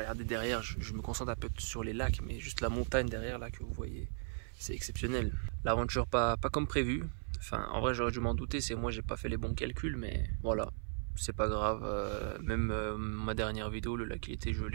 derrière. Je me concentre un peu sur les lacs, mais juste la montagne derrière là que vous voyez, c'est exceptionnel. L'aventure pas comme prévu. Enfin, en vrai, j'aurais dû m'en douter. C'est moi, j'ai pas fait les bons calculs, mais voilà, c'est pas grave. Même ma dernière vidéo, le lac il était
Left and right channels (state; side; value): silent; left; 53 dB below the other